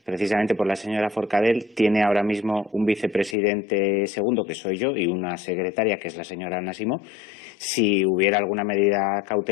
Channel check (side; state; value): right; drops out; at 3.4 s